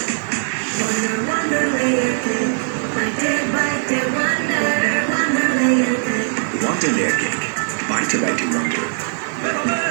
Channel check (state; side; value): silent; left; digital silence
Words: ওয়ান্ডার লেয়ার কেক, বাইটে বাইটে wonder.